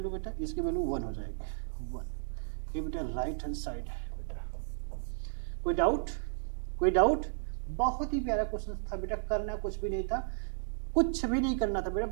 बेटा, इसकी वैल्यू 1 हो जाएगी 1। ये बेटा राइट हैंड साइड है बेटा। कोई डाउट, कोई डाउट, बहुत ही प्यारा क्वेश्चन था बेटा, करना कुछ भी नहीं था, कुछ भी नहीं करना था बेटा,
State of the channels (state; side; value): silent; left; digital silence